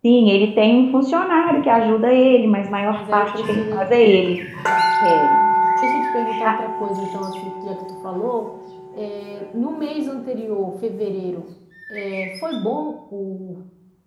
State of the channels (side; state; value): both; identical; correlation 1.00